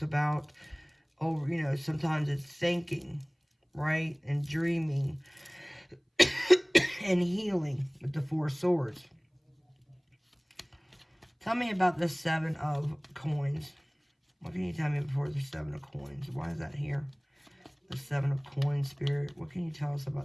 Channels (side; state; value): both; identical; correlation 1.00